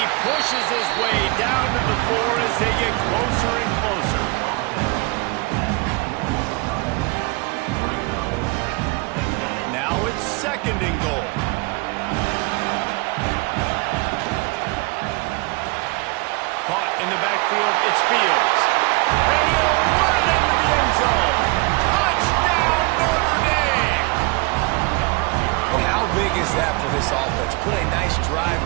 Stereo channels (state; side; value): quieter; left; 27.8 dB